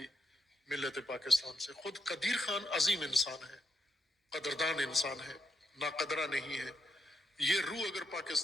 ملت پاکستان سے. خود قدیر خان عظیم انسان ہے، قدردان انسان ہے، ناقدرہ نہیں ہے. یہ روح اگر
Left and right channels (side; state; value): both; normal; correlation 0.80